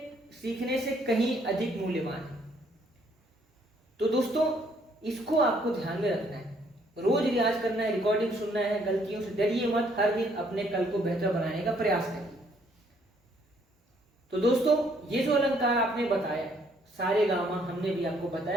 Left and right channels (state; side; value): normal; both; correlation 0.67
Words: सीखने से कहीं अधिक मूल्यवान है। तो दोस्तों इसको आपको ध्यान में रखना है, रोज रियाज करना है, रिकॉर्डिंग सुनना है, गलतियों से डरिए मत, हर दिन अपने कल को बेहतर बनाने का प्रयास करिए। तो दोस्तों ये जो अलंकार आपने बताया, सारे गामा हमने भी आपको